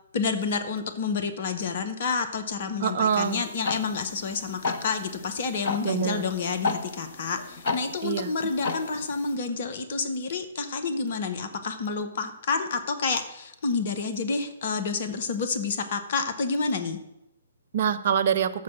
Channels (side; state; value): both; inverted; correlation -0.49